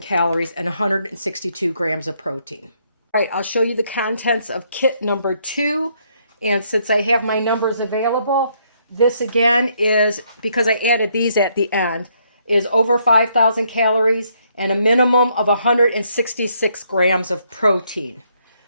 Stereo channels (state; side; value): inverted; both; correlation -0.72